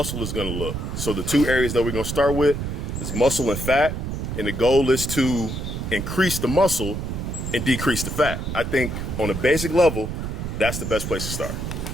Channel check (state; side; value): noise; right; rumble, 4 dB below the sound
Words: is going to look. So the two areas that we're going to start with is muscle and fat, and the goal is to increase the muscle and decrease the fat. I think on a basic level, that's the best place to start.